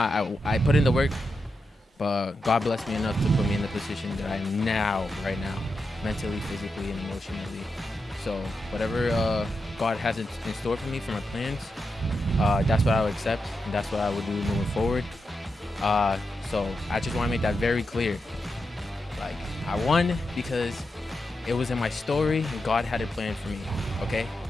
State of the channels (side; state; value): both; normal; correlation 0.87